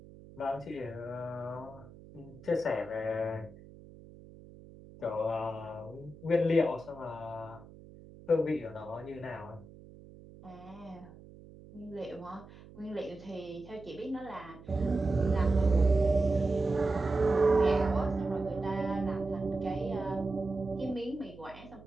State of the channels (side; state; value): right; noise; hum, 19 dB below the sound